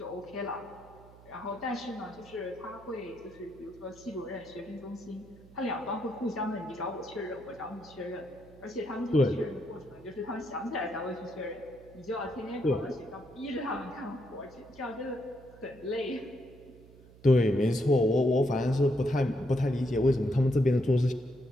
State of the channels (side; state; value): right; noise; hum, 22 dB below the sound